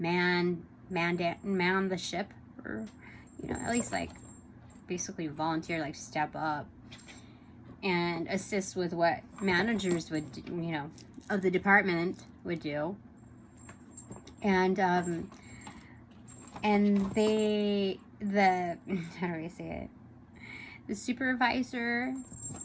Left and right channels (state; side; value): identical; both; correlation 1.00